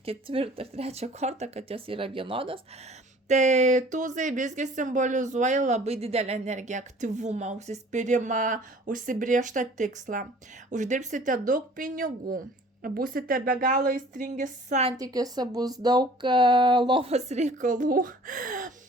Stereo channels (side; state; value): both; normal; correlation 0.50